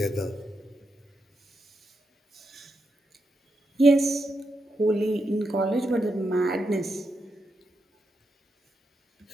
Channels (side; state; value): both; normal; correlation 0.84